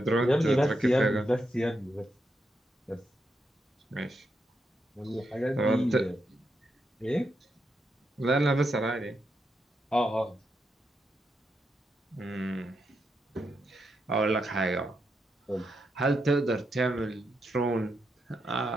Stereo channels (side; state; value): both; normal; correlation 0.83